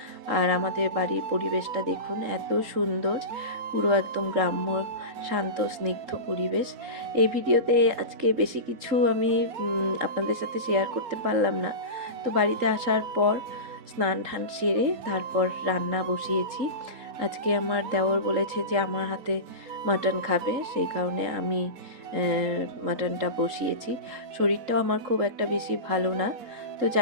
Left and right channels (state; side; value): late; left; 3.8 ms